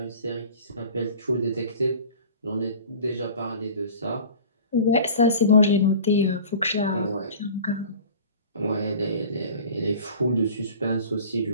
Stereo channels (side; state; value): both; inverted; correlation -0.42